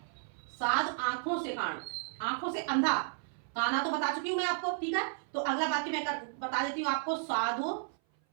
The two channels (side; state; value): left; silent; 56 dB below the other